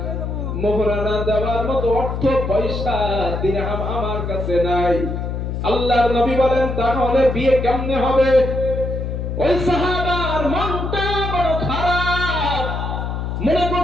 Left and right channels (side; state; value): left; noise; hum, 3 dB below the sound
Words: মোহরানা দেওয়ার মতো অর্থ পয়সা দিরহাম আমার কাছে নাই। আল্লাহর নবী বলেন তাহলে বিয়ে কেমনে হবে? ওই সাহাবার মনটা বড় খারাপ, মনে